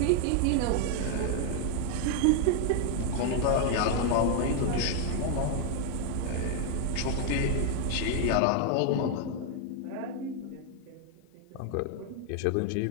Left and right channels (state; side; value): different; both; correlation 0.01